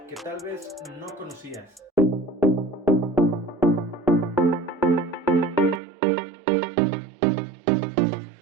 que tal vez no conocías.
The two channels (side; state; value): left; drops out; at 5.8 s